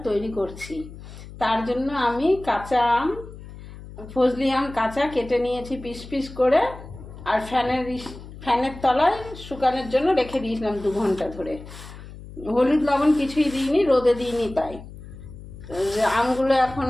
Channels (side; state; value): left; noise; hum, 15 dB below the sound